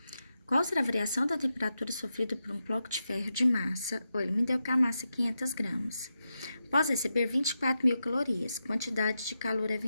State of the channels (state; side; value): inverted; both; correlation -0.88